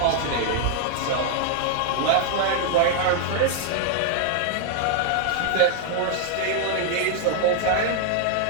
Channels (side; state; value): both; different; correlation 0.00